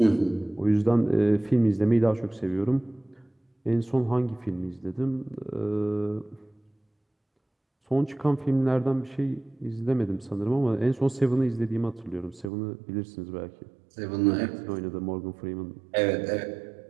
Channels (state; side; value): drops out; left; at 12.5 s